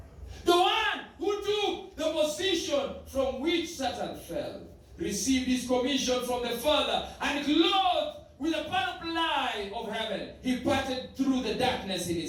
The one who took the position from which Satan fell received his commission from the Father and clothed with a panoply of heaven, he parted through the darkness in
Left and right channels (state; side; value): identical; both; correlation 1.00